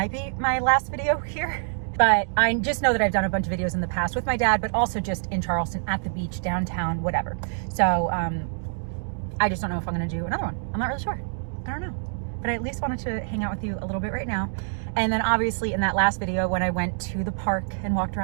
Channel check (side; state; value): left; silent; digital silence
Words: be my last video here. But I just know that I've done a bunch of videos in the past with my dad, but also just in Charleston, at the beach, downtown, whatever. So I just don't know if I'm gonna do another one. I'm not really sure. I don't know. But I at least wanted to hang out with you a little bit right now. And then obviously in that last video when I went to the park and walked